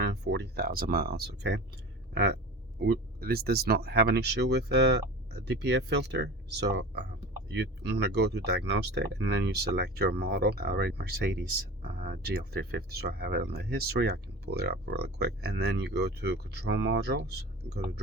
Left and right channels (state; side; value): normal; both; correlation 0.35